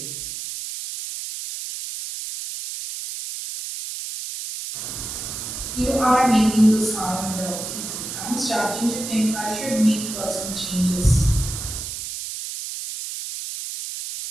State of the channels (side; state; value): right; noise; hiss, 7 dB below the sound